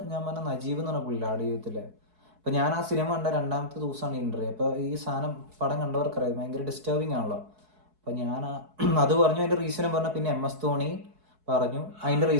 ഞാൻ പറഞ്ഞ നജീബ് എന്ന് പറഞ്ഞ പുള്ളിയില്ല ആട് ജീവിതത്തില്. അപ്പൊ ഞാൻ ആ സിനിമ കണ്ട രണ്ടാമത്തെ ദിവസമാണ് ഇന്റർവ്യൂ. അപ്പൊ ഈ സാധനം പടം കണ്ടവർക്കറിയാം ഭയങ്കര ഡിസ്റ്റർബിങ് ആണല്ലോ. അപ്പൊ ഞാൻ അത് പറഞ്ഞു, അതിന്റെ റീസണും പറഞ്ഞു. പിന്നെ MS ധോണി പറഞ്ഞു, അതിന്റെ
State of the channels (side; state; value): left; late; 4.7 ms